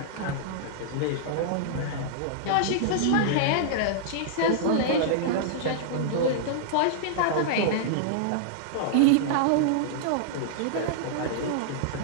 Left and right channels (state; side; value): different; both; correlation -0.02